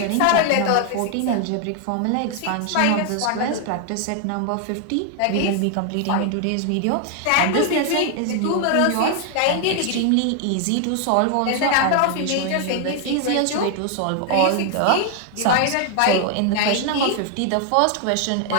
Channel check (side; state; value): both; different; correlation 0.00